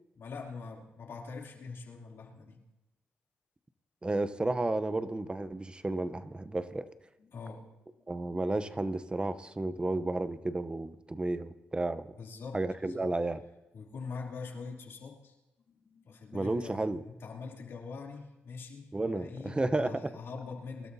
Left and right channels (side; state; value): both; normal; correlation 0.95